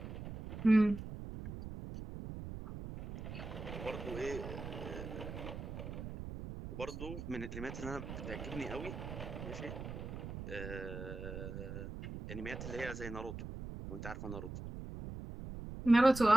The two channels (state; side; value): noise; right; rumble, 8 dB below the sound